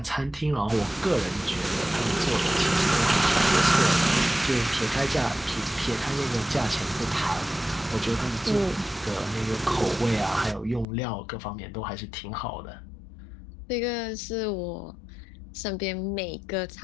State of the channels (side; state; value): right; drops out; at 10.9 s